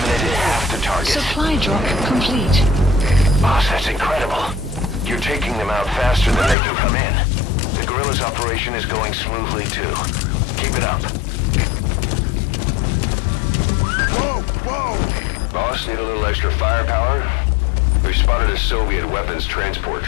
Supply drop complete. Boss, that's incredible. You're taking them out faster than they can come in. The guerrilla's operation is going smoothly, too. Keep it up. Whoa, whoa! Boss, need a little extra firepower? We spotted a Soviet weapons transport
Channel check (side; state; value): right; drops out; at 6.6 s